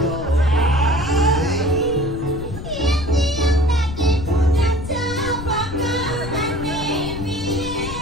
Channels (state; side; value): noise; left; rumble, 9 dB below the sound